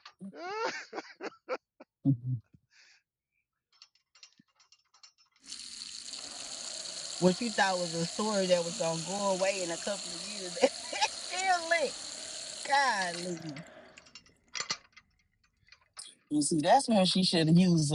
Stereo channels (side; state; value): both; identical; correlation 1.00